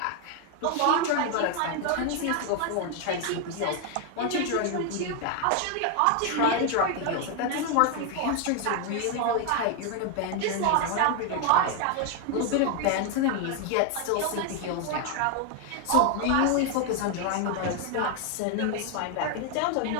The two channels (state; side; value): different; both; correlation 0.01